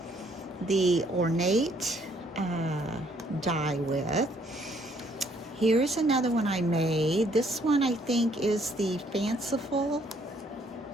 the ornate die with. Here's another one I made. This one I think is the fanciful.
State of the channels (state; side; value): normal; both; correlation 0.66